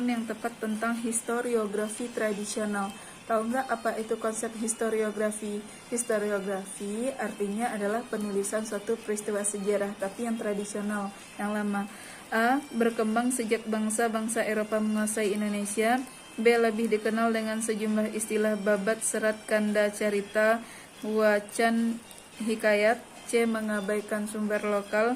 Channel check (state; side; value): identical; both; correlation 1.00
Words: yang tepat tentang historiografi tradisional. Tahu nggak apa itu konsep historiografi? Historiografi artinya adalah penulisan suatu peristiwa sejarah, tapi yang tradisional, yang lama. A. Berkembang sejak bangsa-bangsa Eropa menguasai Indonesia. B. Lebih dikenal dengan sejumlah istilah babat, serat, kanda, carita, wacan, hikayat. C. Mengabaikan sumber